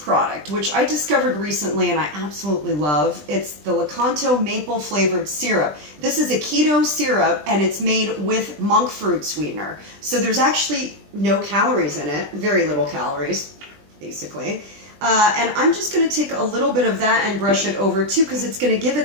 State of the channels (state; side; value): late; left; 20 ms